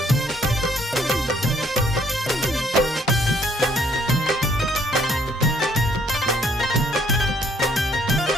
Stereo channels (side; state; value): both; normal; correlation 0.65